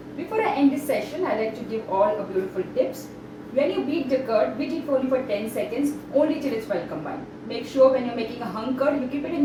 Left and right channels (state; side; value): identical; both; correlation 1.00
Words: Before I end this session, I like to give all a beautiful tips. When you beat the curd, beat it only for 10 seconds, only till it's well combined. Make sure when you're making a hung curd, you keep it in